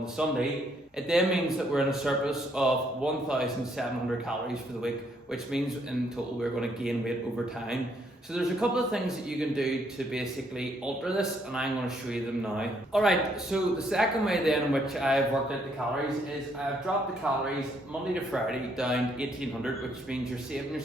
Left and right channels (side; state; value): both; normal; correlation 0.70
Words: the Sunday, it then means that we're in a surplus of 1,700 calories for the week, which means in total we're going to gain weight over time. So there's a couple of things that you can do to basically alter this, and I'm going to show you them now. Alright, so the second way then in which I've worked out the calories is, I've dropped the calories Monday to Friday down 1,800, which means you're saving